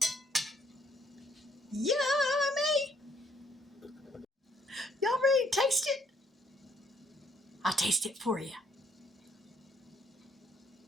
Yummy! Y'all ready to taste it? I'll taste it for you.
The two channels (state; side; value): normal; both; correlation 0.67